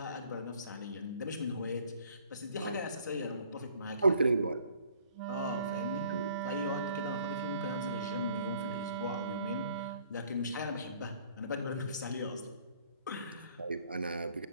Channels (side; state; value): both; inverted; correlation -0.57